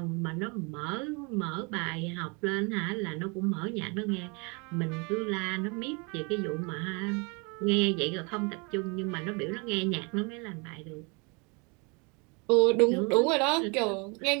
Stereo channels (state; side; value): quieter; left; 31.7 dB